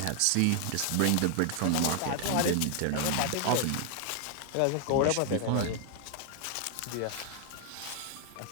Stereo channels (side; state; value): both; different; correlation 0.00